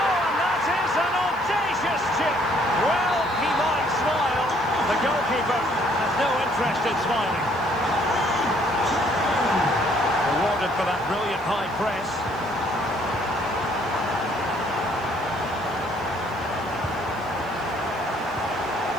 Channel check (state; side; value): noise; left; hiss, 28 dB below the sound